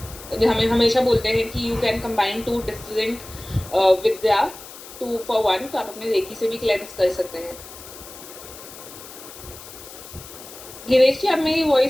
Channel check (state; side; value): noise; left; hiss, 16 dB below the sound